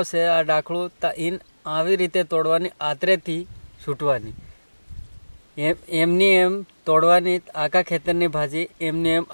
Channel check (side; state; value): both; inverted; correlation -1.00